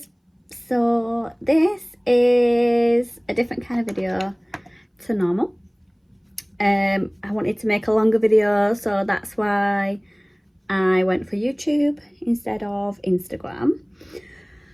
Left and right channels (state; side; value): identical; both; correlation 1.00